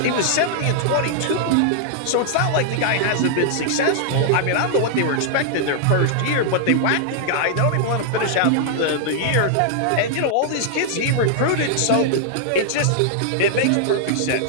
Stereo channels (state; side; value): different; both; correlation -0.01